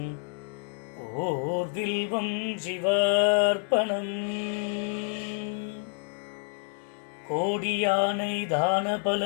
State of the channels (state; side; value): silent; right; digital silence